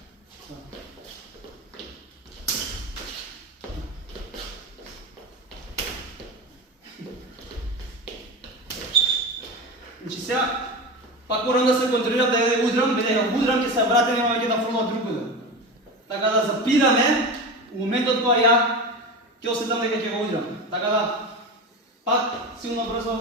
Значи сега, пак морам да се контролирам да ја удрам, бидејќи ако удрам ќе се вратам и ќе да фрлам другаде. Така да запираме у моментот кога ја ќе осетам дека ќе го удрам. Така да пак силно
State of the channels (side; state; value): both; normal; correlation 0.24